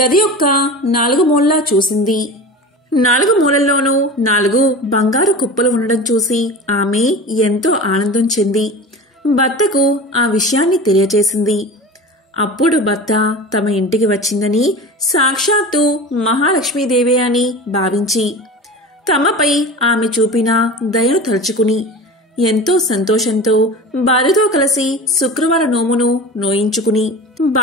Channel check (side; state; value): both; normal; correlation 0.33